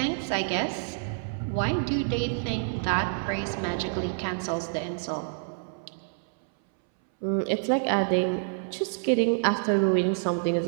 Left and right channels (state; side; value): silent; left; 60 dB below the other